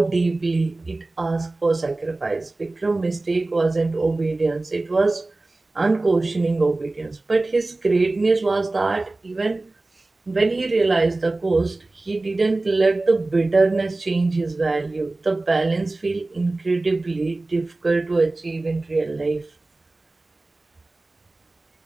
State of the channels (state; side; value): quieter; left; 3.1 dB